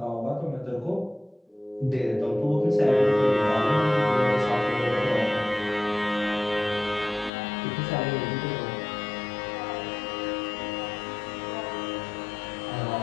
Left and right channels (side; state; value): right; drops out; at 7.3 s